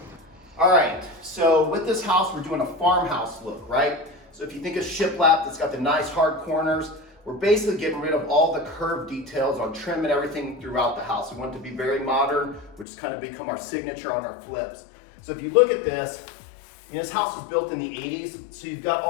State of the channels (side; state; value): right; drops out; at 12.9 s